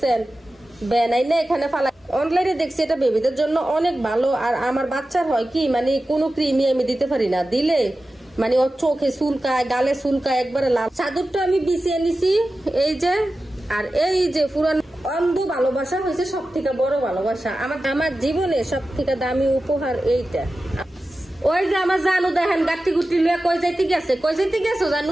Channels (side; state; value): both; normal; correlation 0.94